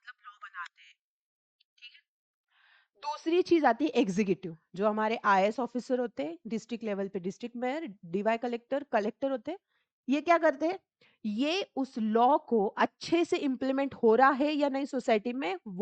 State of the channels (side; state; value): both; identical; correlation 1.00